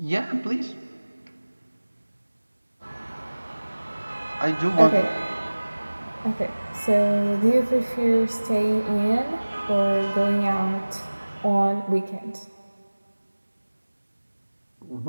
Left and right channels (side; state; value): both; inverted; correlation -1.00